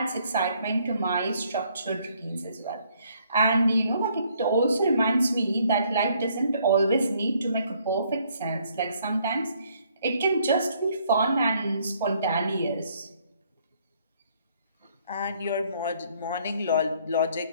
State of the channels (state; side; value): inverted; both; correlation -0.66